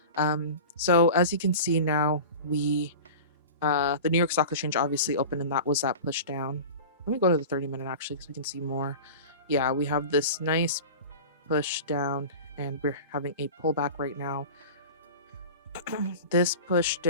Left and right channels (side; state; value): both; inverted; correlation -0.34